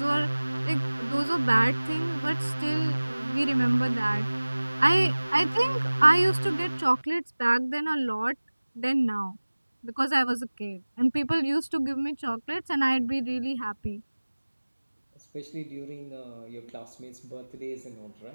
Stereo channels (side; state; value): both; inverted; correlation -1.00